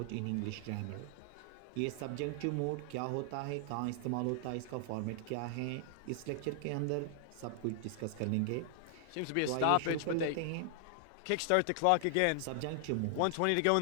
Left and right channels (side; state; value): both; different; correlation 0.00